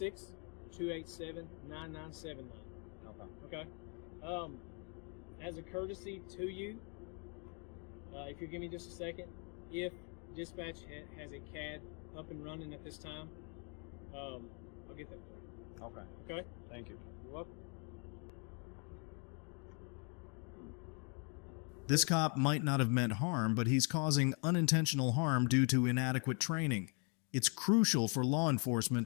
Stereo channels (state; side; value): quieter; right; 37.5 dB